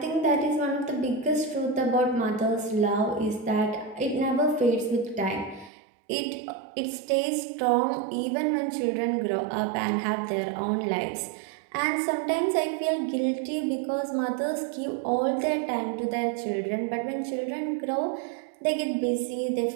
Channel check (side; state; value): left; drops out; at 5.7 s